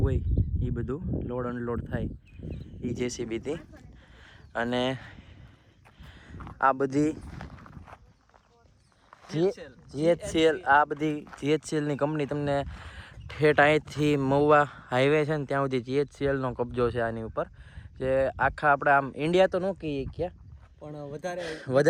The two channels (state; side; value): identical; both; correlation 1.00